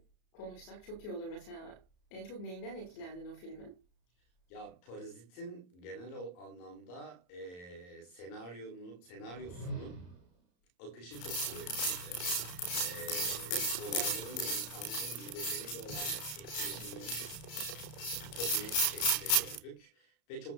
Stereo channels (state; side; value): late; right; 34 ms